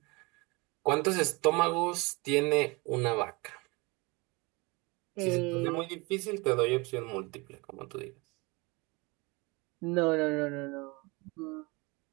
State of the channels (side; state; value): left; quieter; 26.3 dB